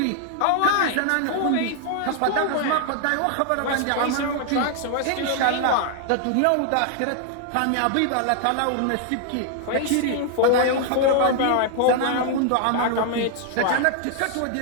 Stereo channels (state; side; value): different; both; correlation 0.00